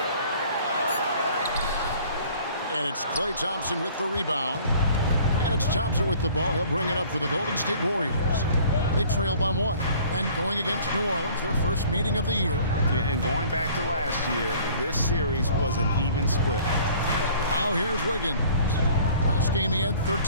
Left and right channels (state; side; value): inverted; both; correlation -0.52